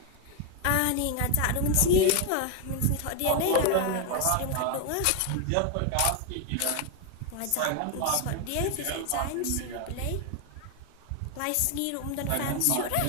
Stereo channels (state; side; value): different; both; correlation 0.01